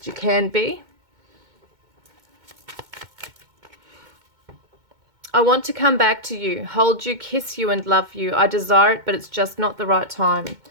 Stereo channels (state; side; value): late; left; 2.2 ms